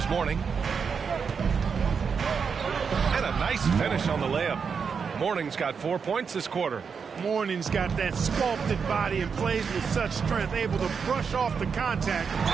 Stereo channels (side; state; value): left; quieter; 6.0 dB